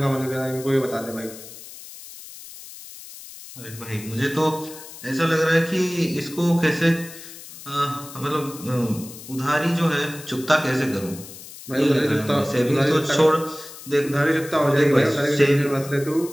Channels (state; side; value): noise; left; hiss, 15 dB below the sound